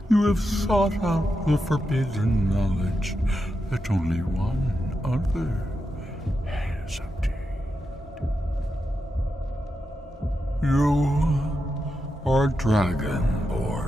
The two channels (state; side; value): normal; both; correlation 0.87